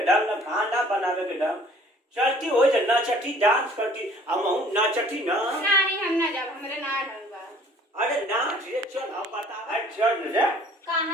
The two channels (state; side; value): normal; both; correlation 0.54